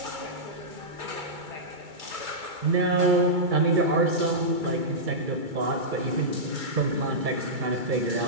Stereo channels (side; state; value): left; late; 2.3 ms